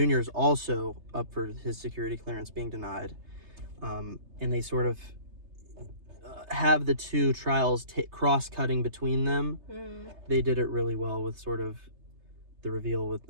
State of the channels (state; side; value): late; left; 3.3 ms